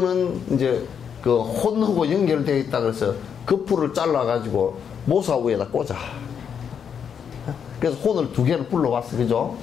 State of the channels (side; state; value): right; quieter; 7.5 dB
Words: 이제 그 혼하고 연결되어 있다 그래서 그 풀을 잘라가지고 모사 위에다 꽂아. 그래서 혼을 2개를 불러왔어. 그죠?